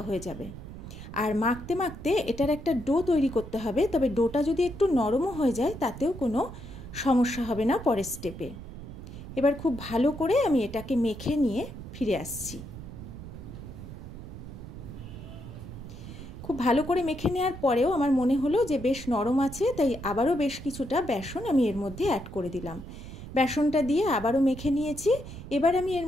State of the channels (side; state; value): right; noise; rumble, 12 dB below the sound